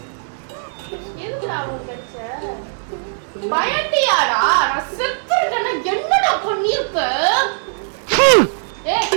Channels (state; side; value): silent; left; digital silence